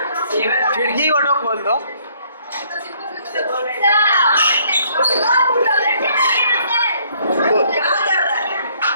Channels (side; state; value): both; inverted; correlation -0.64